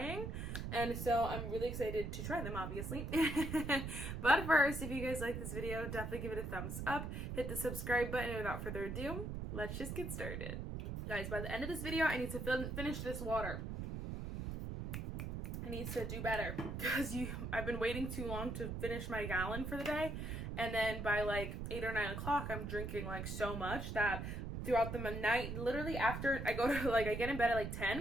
And so I'm really excited to try them, obviously. But first, if you guys like this video, definitely give it a thumbs up. Hit the subscribe button, and without further ado, let's just get started. Guys, by the end of this video, I need to finish this water. I need to do better because I've been waiting too long to finish my gallon for the day, and then by like 8 or 9 o'clock I'm drinking like so much that throughout the night, literally after I go to I get in bed at like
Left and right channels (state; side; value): noise; right; rumble, 5 dB below the sound